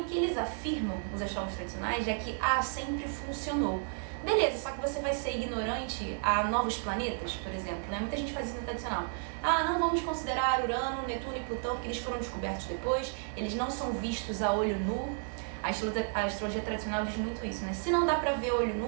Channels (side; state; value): left; silent; 56 dB below the other